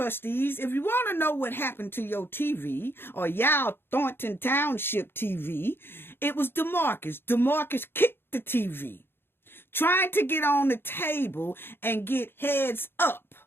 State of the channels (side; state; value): right; late; 0.11 ms